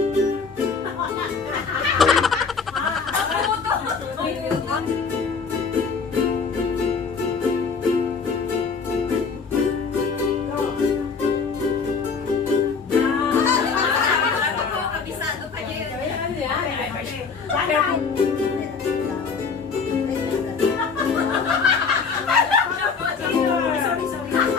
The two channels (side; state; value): right; quieter; 5.3 dB